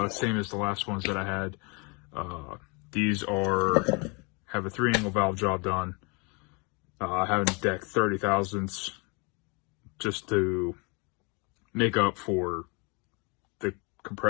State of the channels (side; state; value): right; quieter; 30.8 dB